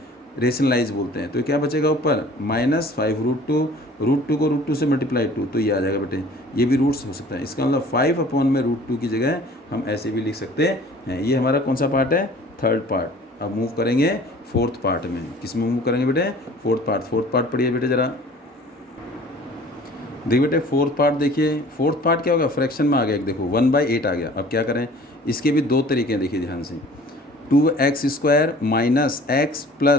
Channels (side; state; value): both; normal; correlation 0.48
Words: रेशनलाइज बोलते हैं। तो क्या बचेगा ऊपर -5√2, √2 को √2 से मल्टीप्लाई 2, तो ये आ जाएगा बेटे। ये भी रूट्स हो सकता है, इसका मतलब 5/√2 की जगह हम ऐसे भी लिख सकते हैं। ये हमारा कौन सा पार्ट है? Third part. अब मूव करेंगे फोर्थ पार्ट में। किस में मूव करेंगे बेटे? Fourth part. फोर्थ पार्ट पढ़िए बेटे ज़रा। देखिए बेटे फोर्थ पार्ट देखिए, फोर्थ पार्ट क्या होगा? फ्रैक्शन में आ गया एक, देखो 1/8 आ गया। अब क्या करें? इसके भी दो तरीके हैं, देखिए ध्यान से। 2x² minus x